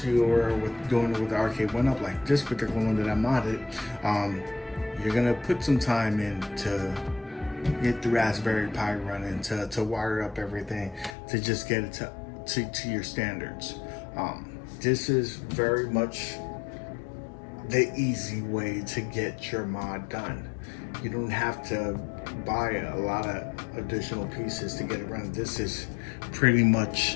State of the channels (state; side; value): drops out; right; at 11.2 s